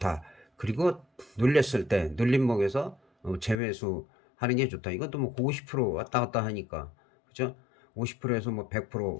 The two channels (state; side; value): drops out; right; at 3.6 s